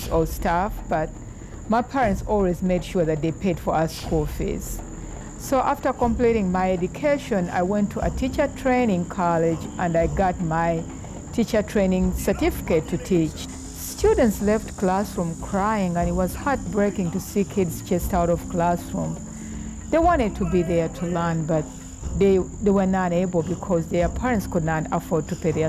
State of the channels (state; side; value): identical; both; correlation 1.00